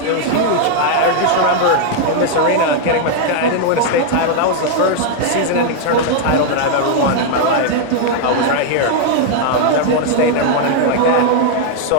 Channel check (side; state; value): both; different; correlation 0.00